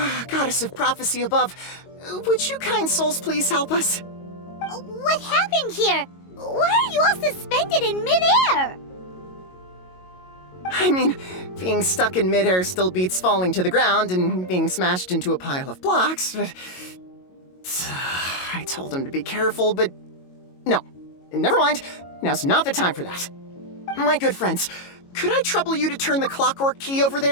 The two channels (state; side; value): late; right; 22 ms